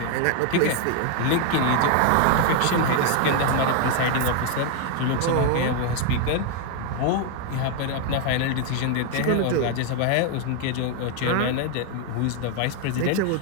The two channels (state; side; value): different; both; correlation 0.01